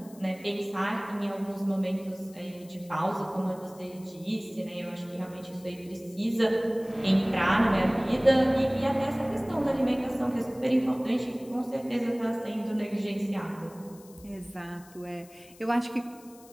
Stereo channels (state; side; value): noise; left; hiss, 24 dB below the sound